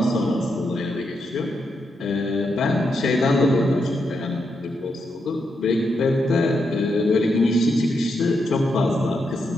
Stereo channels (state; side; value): normal; both; correlation 0.82